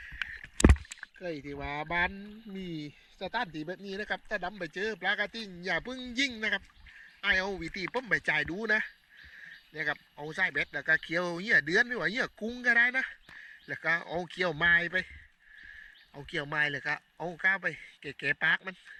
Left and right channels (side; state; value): both; identical; correlation 1.00